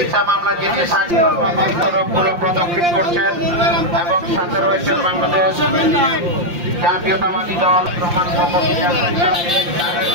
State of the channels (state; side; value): late; left; 5.7 ms